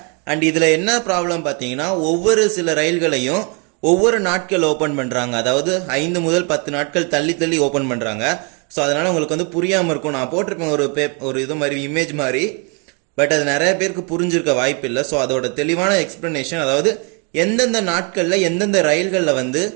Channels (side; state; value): left; quieter; 33.7 dB